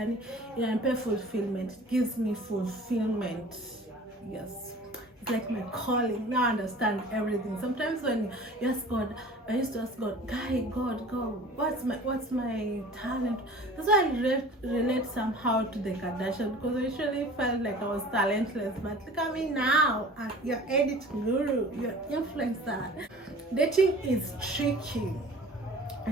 fulfillment. It gives me fulfillment. Yes, it's like my calling. Now I understand everything. Sometimes when you ask God, I used to ask God, God, what's my talent? That's why I relate somehow to the Kardashian, because I usually felt like I was talentless. But look at me now, you're edit guru, you're influencer. Dating is tricky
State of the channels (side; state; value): both; normal; correlation 0.44